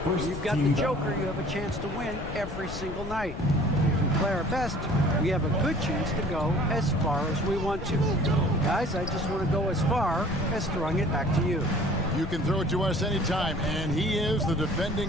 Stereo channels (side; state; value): left; noise; rumble, 9 dB below the sound